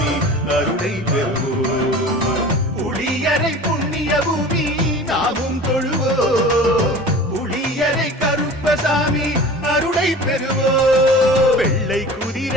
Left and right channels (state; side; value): normal; both; correlation 0.39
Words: அருளை பெறுவோம். புளியரை புண்ணிய பூமி நாமும் தொழுவோம், புளியரை கருப்பசாமி அருளை பெறுவோம். வெள்ளை